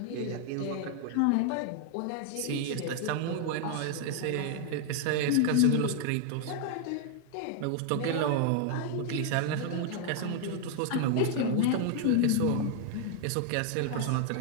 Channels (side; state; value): both; different; correlation 0.00